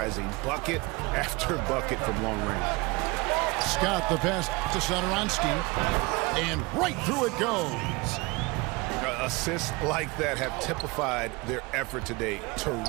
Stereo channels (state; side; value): quieter; left; 25.1 dB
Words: Bucket after bucket from long range. Scott the pass to Satoransky. And right through it goes. Assists like that have typified their effort today.